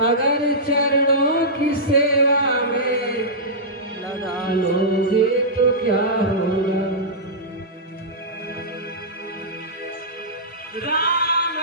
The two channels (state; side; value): normal; both; correlation -0.15